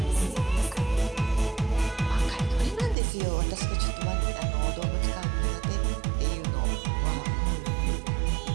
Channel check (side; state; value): left; drops out; at 3.0 s